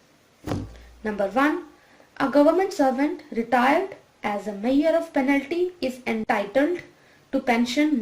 Number 1, a government servant retired as a measure of penalty is entitled to pension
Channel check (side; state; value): both; identical; correlation 1.00